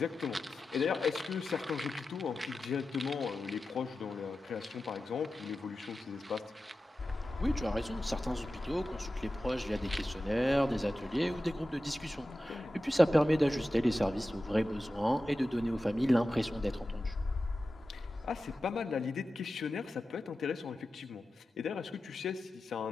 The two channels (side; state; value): both; normal; correlation 0.93